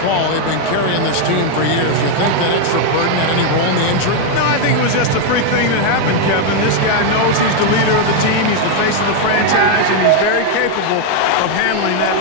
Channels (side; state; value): both; different; correlation 0.01